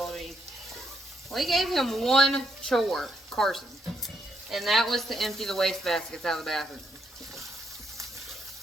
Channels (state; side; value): normal; both; correlation 0.76